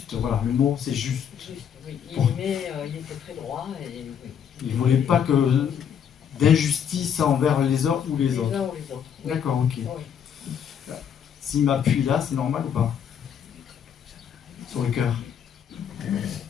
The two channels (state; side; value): quieter; right; 8.2 dB